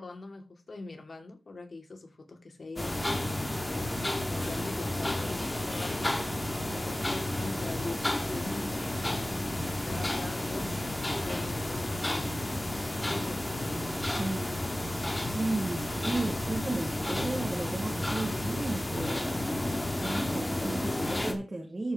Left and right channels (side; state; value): both; normal; correlation 0.96